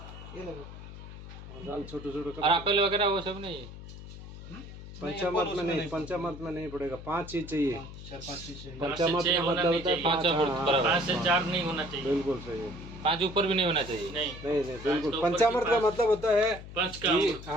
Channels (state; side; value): noise; left; hum, 13 dB below the sound